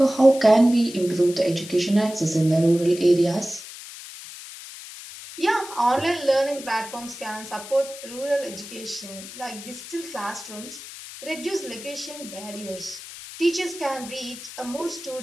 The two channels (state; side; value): noise; left; hiss, 13 dB below the sound